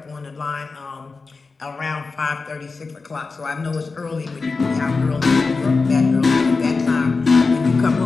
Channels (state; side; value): quieter; right; 4.2 dB